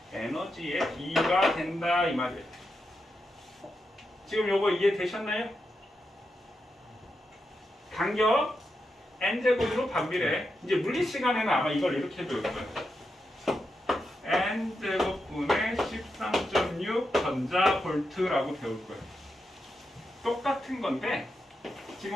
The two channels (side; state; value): both; normal; correlation 0.86